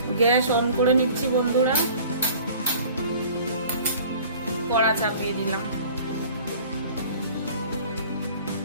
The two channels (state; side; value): inverted; both; correlation -0.48